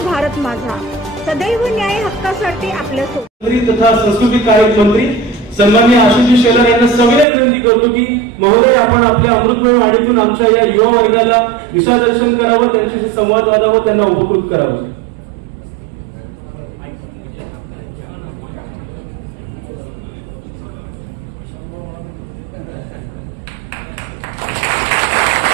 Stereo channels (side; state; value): left; drops out; at 7.2 s